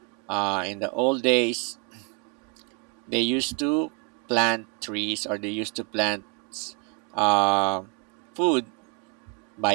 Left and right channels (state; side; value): quieter; left; 35.1 dB